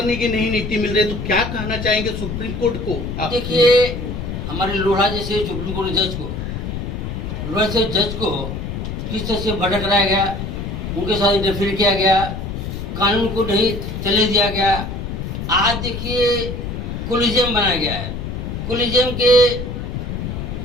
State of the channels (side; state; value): left; noise; rumble, 5 dB below the sound